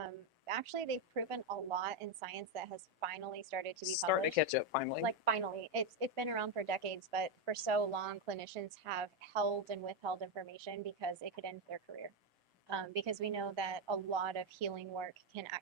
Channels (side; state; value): both; normal; correlation 0.05